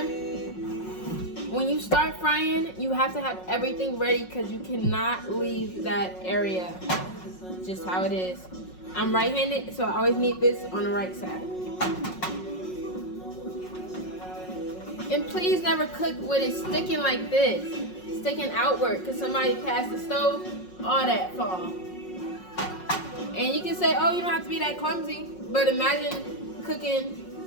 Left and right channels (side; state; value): right; late; 5.5 ms